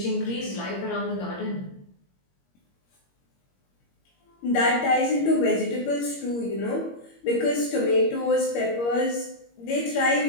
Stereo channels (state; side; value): late; right; 21 ms